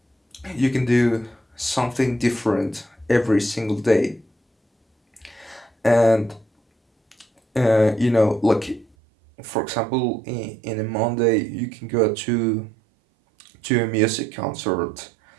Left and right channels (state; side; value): drops out; left; at 8.8 s